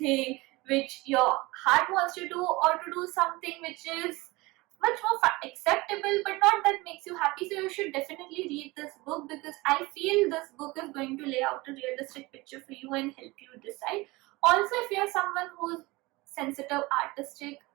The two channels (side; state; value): left; quieter; 22.3 dB